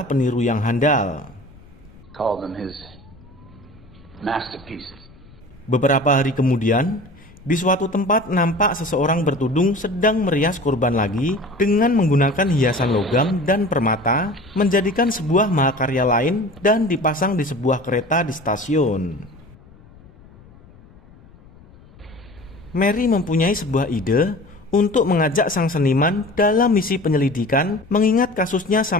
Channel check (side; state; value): left; noise; rumble, 24 dB below the sound